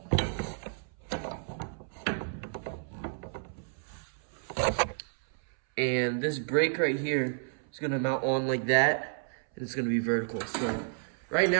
And this brake right here is gonna mount on like that, and it's gonna be vertical. So right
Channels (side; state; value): left; silent; 57 dB below the other